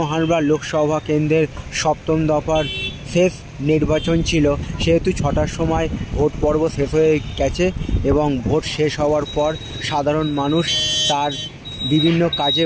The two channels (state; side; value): identical; both; correlation 1.00